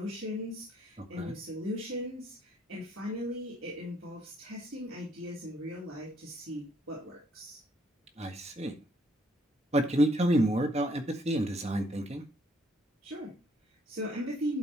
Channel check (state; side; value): normal; both; correlation 0.68